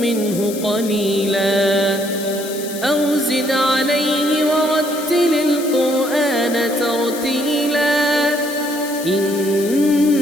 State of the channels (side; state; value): left; noise; hiss, 12 dB below the sound